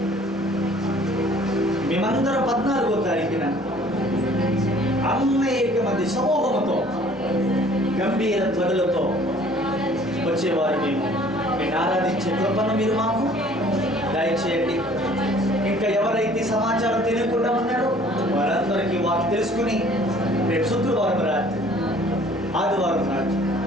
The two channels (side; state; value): both; normal; correlation 0.54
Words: మేమందరం 14వ తారీఖున అనేక మంది సమూహంతో గంభీర ధ్వనులతో వచ్చేవారు. మేము నేను ఆరాధించే కృపను మీరు మాకు దయచేయండి. ఇంకా ఎవరైతే సమాచారం తెలియకుండా ఉన్నారో వారందరికీ వారు తెలుసుకుని రేపు శుక్రవారం రాత్రి ఆదివారం రాత్రి